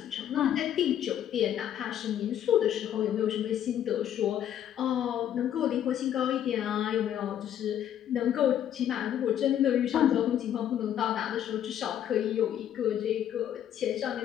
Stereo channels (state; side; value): quieter; right; 10.4 dB